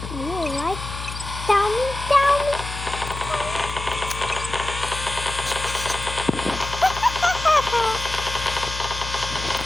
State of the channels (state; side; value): noise; left; hum, 8 dB below the sound